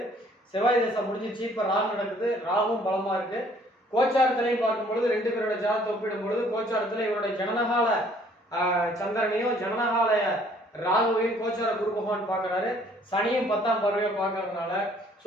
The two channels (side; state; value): both; normal; correlation 0.59